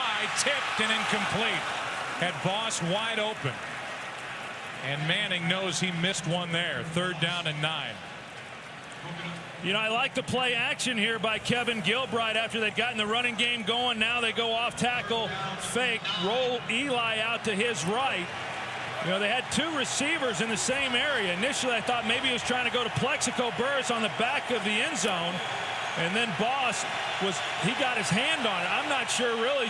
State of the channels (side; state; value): both; identical; correlation 1.00